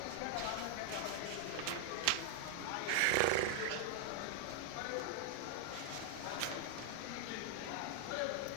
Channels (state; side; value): different; both; correlation 0.00